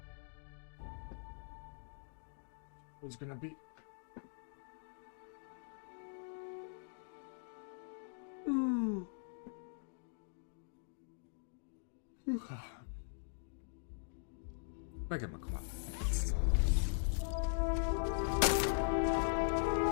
What's gonna be? Megem a kamát.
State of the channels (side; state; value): right; silent; digital silence